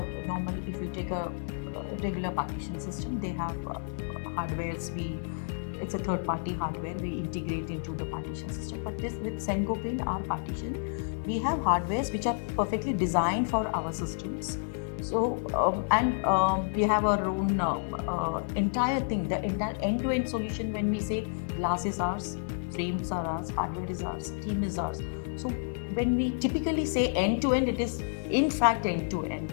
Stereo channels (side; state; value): right; silent; digital silence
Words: if you take a regular partition system, they have hardwares. It's a third-party hardware we integrate into the partition system. But this with Saint-Gobain, our partition, we have hardwares which are perfectly designed for our systems. So we have our own entire thing, the entire end-to-end solution. When we say glass is ours, frames are ours, hardware is ours, team is ours. So when we typically say end-to-end, it is in fact end-to-end.